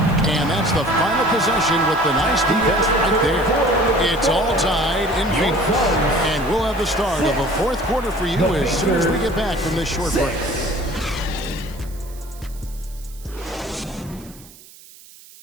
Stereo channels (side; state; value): right; noise; hiss, 22 dB below the sound